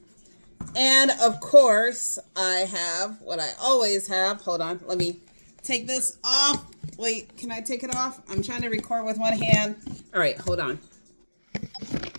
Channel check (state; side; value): inverted; both; correlation -1.00